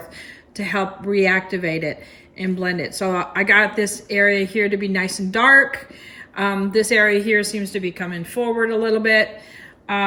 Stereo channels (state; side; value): identical; both; correlation 1.00